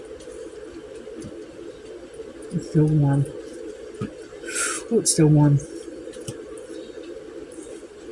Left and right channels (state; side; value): identical; both; correlation 1.00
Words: It's still warm. Oh, it's still warm.